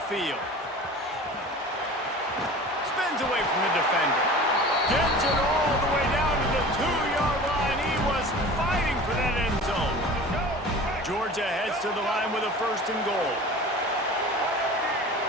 Spins away from the defender. Gets it all the way down to the 2-yard line. He was fighting for that end zone. Georgia heads to the line with a 1st and goal.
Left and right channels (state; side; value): normal; both; correlation 0.39